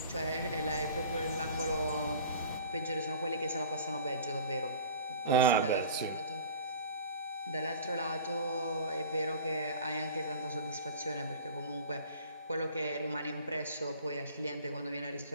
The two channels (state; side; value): inverted; both; correlation -0.43